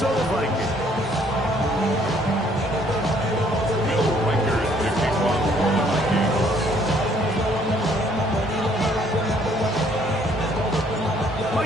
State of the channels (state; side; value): normal; both; correlation 0.63